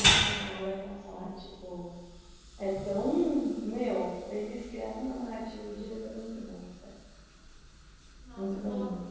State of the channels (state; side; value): identical; both; correlation 1.00